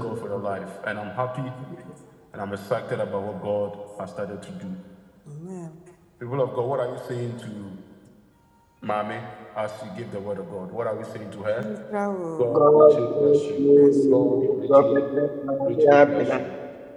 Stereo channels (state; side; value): identical; both; correlation 1.00